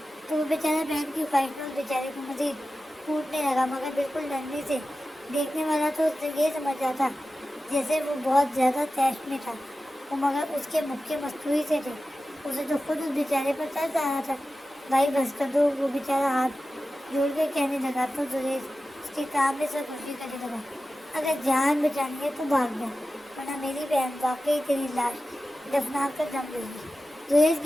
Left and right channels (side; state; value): both; normal; correlation 0.94